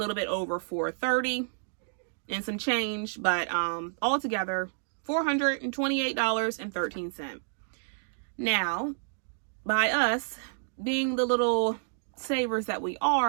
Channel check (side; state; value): left; silent; digital silence